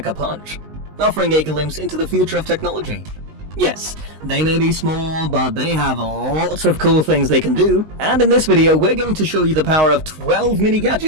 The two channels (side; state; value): left; late; 19 ms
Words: a punch, offering a glimpse into the future of technology. Yes, they may be small, but they have lots of cool things they can do, and in this video we're going to show you the power of 12 mini